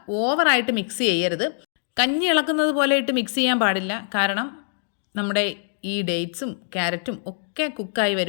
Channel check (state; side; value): silent; right; 63 dB below the other